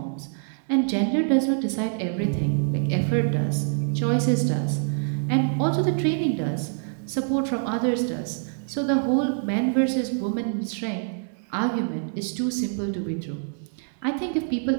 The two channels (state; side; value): silent; left; digital silence